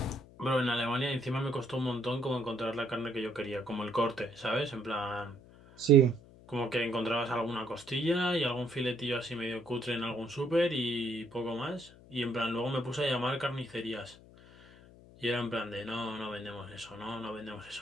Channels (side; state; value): left; noise; hum, 21 dB below the sound